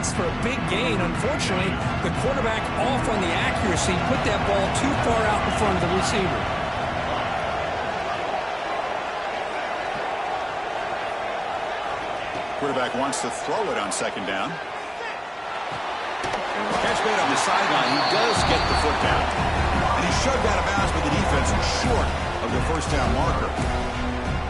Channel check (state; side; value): identical; both; correlation 1.00